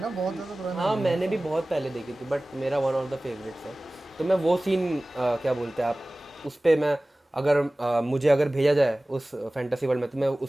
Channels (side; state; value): both; normal; correlation 0.98